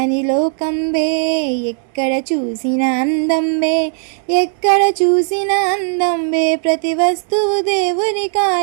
లోకం బే, ఎక్కడ చూసిన అందం బే, ఎక్కడ చూసిన అందం బే, ప్రతి వస్తువు దేవుని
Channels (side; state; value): left; silent; 68 dB below the other